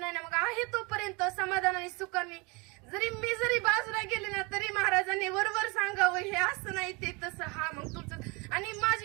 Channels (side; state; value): left; quieter; 28.2 dB